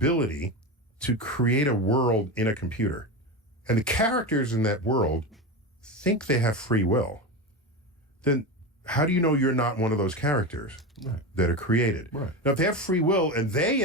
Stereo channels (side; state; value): both; normal; correlation 0.20